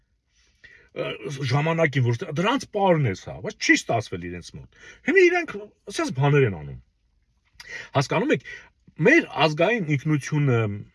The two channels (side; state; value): both; identical; correlation 1.00